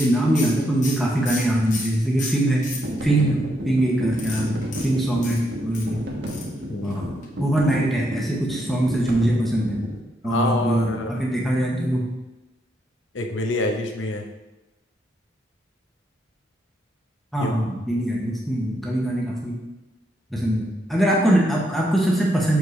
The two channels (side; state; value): both; normal; correlation 0.78